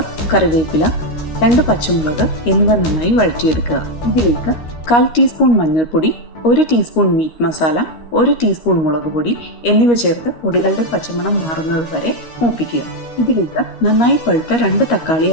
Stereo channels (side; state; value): right; late; 13 ms